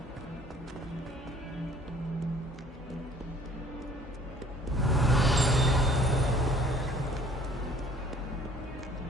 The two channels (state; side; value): normal; both; correlation 0.55